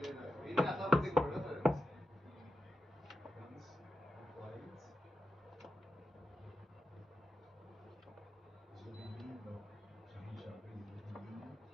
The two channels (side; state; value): both; normal; correlation 0.90